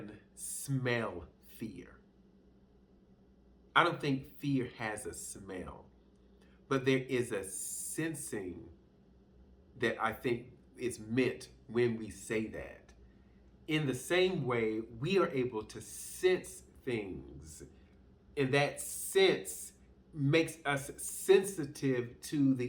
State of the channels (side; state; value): both; identical; correlation 1.00